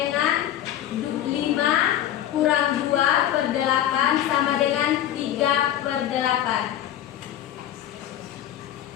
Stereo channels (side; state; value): right; quieter; 11.6 dB